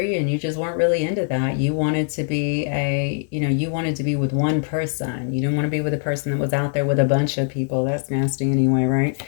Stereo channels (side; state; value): right; silent; digital silence